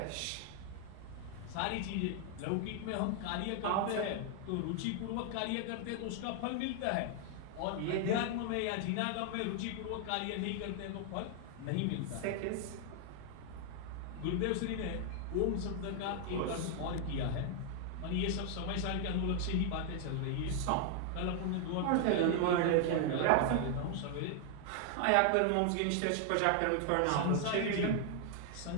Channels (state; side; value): different; both; correlation 0.00